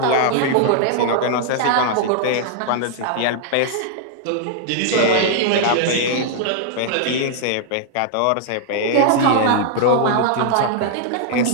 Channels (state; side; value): different; both; correlation -0.01